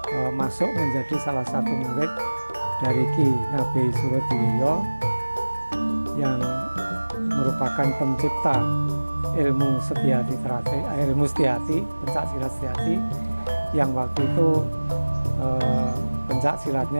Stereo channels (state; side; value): inverted; both; correlation -1.00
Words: masuk menjadi salah satu murid dari Ki Ngabei Surodiwiryo yang merupakan pencipta ilmu Setyaki Trate, ilmu Setyaki, pencak silat Setyaki, yang waktu itu pencak